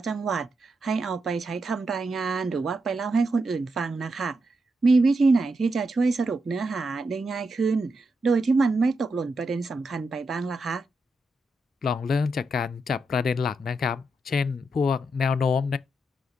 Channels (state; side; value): normal; both; correlation 0.84